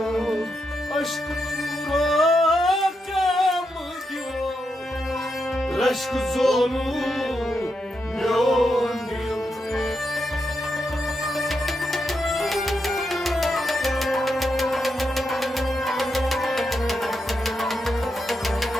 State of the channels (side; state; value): both; normal; correlation 0.84